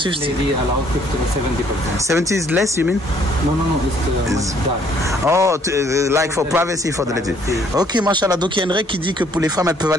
50. Lady allowed 50 to 70%. 70 is less, you mean? No, it's much dark. Oh, like for privacy for the lady. Ok, mashallah. Donc il y a une règle qui dit que pour les femmes, elles peuvent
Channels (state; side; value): normal; both; correlation 0.63